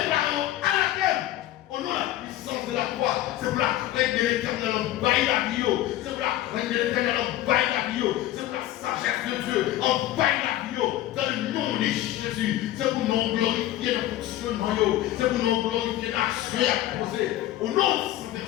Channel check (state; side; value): quieter; right; 14.3 dB